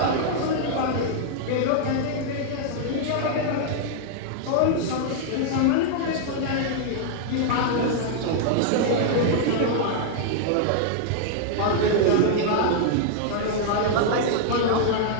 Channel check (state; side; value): different; both; correlation -0.01